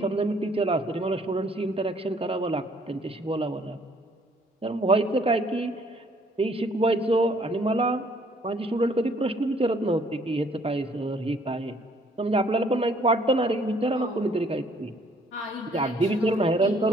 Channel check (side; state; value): both; normal; correlation 0.62